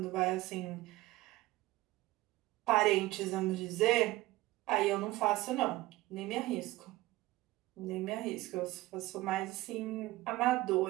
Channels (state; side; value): quieter; left; 18.4 dB